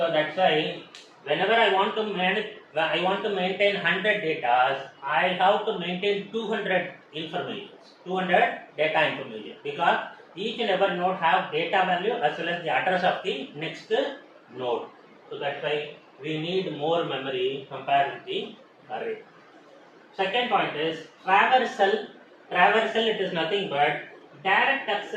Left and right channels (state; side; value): identical; both; correlation 1.00